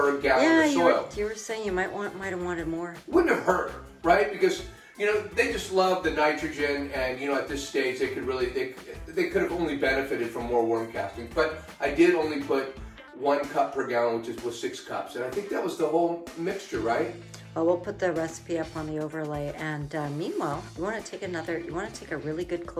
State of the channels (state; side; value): identical; both; correlation 1.00